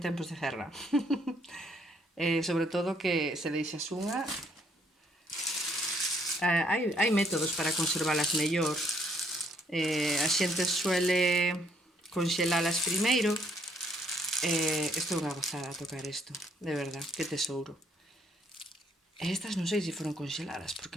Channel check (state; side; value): normal; both; correlation 0.68